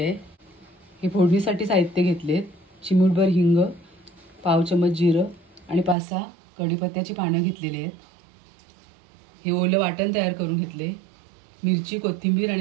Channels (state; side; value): drops out; left; at 6.0 s